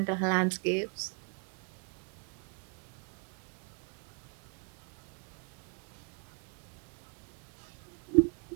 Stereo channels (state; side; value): quieter; left; 37.7 dB